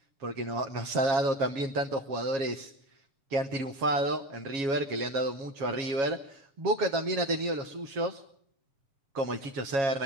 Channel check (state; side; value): late; left; 7.3 ms